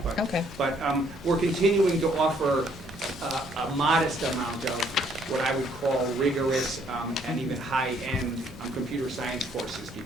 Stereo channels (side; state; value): both; normal; correlation 0.66